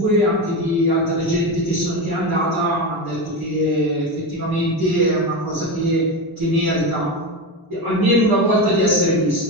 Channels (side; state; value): both; normal; correlation 0.18